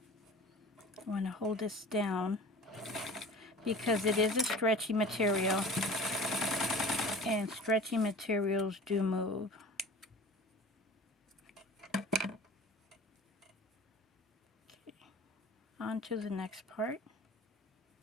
I want to hold this down because it is a stretchy material, and stretchy materials do move. Okay, on to the next part.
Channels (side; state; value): both; normal; correlation 0.40